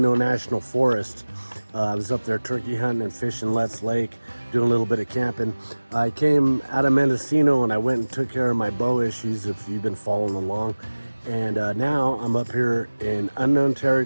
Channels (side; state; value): both; inverted; correlation -1.00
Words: National Forest. I was up there turkey hunting and fishing Let's Lake, doing a little bit of camping. I came out of Mendocino and I went and took care of my bow issues, if you've been following along. And now I'm up here in unknown